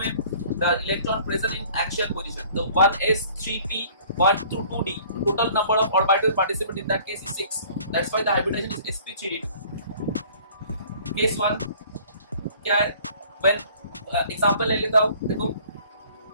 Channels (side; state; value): both; inverted; correlation -0.53